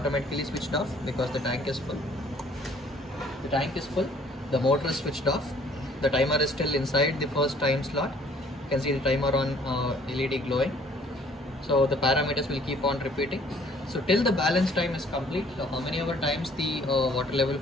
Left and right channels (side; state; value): both; normal; correlation 0.58